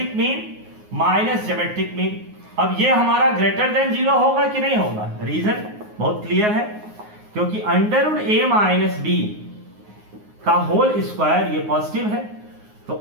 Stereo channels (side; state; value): left; late; 9.5 ms